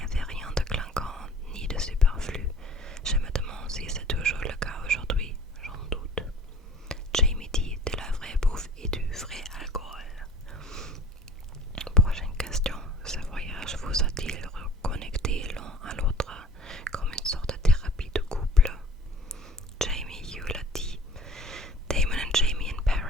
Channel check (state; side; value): normal; both; correlation 0.44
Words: avait rien de clinquant ni de superflu. Je me demande si c'est toujours le cas aujourd'hui, j'en doute. Jamie dit de la vraie bouffe et du vrai alcool. Prochaine question. Ce voyage vous a-t-il reconnecté l'un à l'autre comme une sorte de thérapie de couple? Jamie Hugh l'a dit. Damon and Jamie in